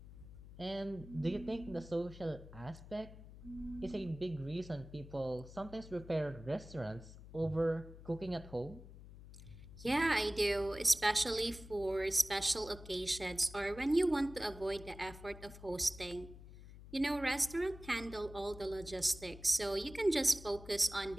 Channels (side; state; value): left; noise; hum, 16 dB below the sound